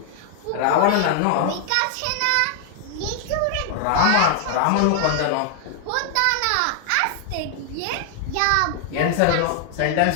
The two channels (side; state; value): both; different; correlation 0.00